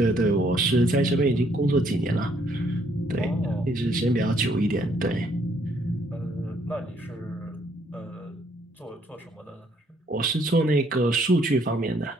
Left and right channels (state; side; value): normal; both; correlation 0.67